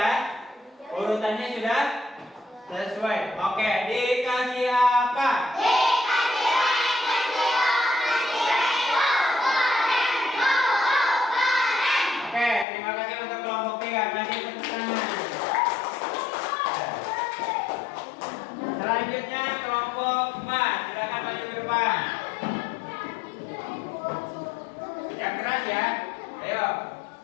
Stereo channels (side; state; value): right; drops out; at 12.7 s